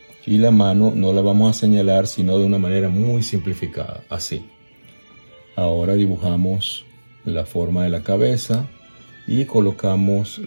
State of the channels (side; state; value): both; inverted; correlation -1.00